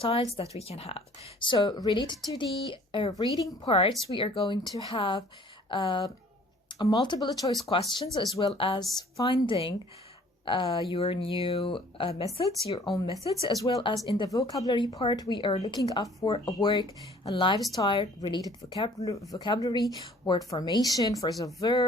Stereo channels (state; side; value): normal; both; correlation 0.54